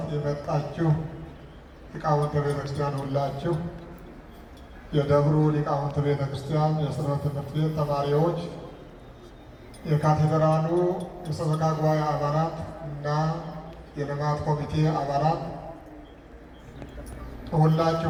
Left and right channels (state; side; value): identical; both; correlation 1.00